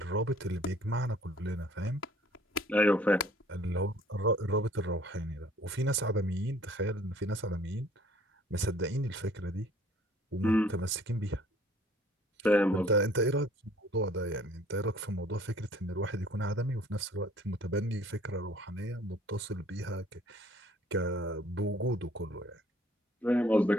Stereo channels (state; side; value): normal; both; correlation 0.56